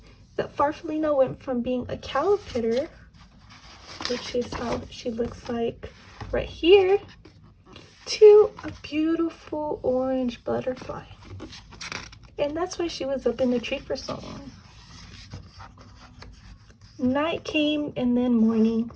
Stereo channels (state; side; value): identical; both; correlation 1.00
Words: that Farfallina went from being a caterpillar, which is how she looks like right here, to a beautiful orange butterfly. And that's why she was up in the tree for so long. Night came and then morning,